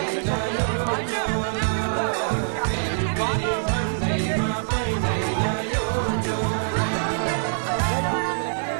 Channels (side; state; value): left; silent; digital silence